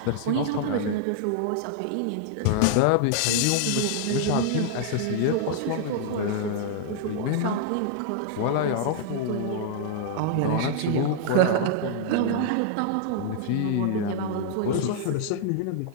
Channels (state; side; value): different; both; correlation -0.01